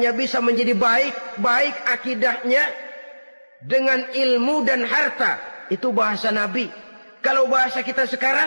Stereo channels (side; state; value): both; inverted; correlation -1.00